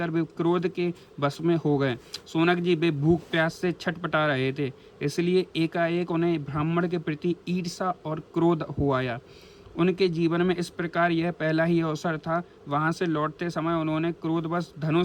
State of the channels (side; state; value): both; identical; correlation 1.00